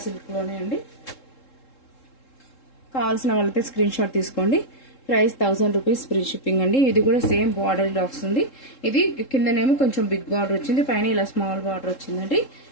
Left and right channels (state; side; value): late; right; 3.7 ms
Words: సిల్క్లోనే అండి. కావాల్సిన వాళ్ళైతే స్క్రీన్ షాట్ తీసుకోండి. ప్రైస్ 1000 రూపీస్ ఫ్రీ షిప్పింగ్ అండి. ఇది కూడా సేమ్ బార్డర్ వస్తుంది. ఇది కిందనేమో కొంచెం బిగ్ బార్డర్ వచ్చింది, పైన ఇలా స్మాల్ బార్డర్ వచ్చిందండి.